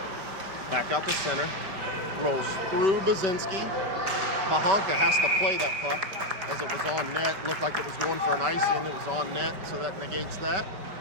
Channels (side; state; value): left; late; 5.2 ms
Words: Back out to center. Rolls through Bazinski. Bahanka has to play that puck as it was on net. Looked like it was going for an icing. It was on net, so that negates that.